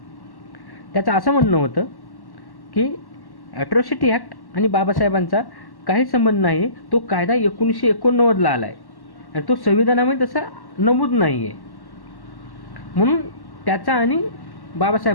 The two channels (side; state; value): right; late; 1.1 ms